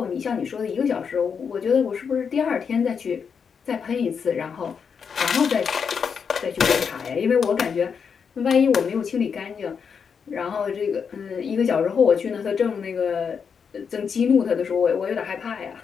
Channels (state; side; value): quieter; right; 6.4 dB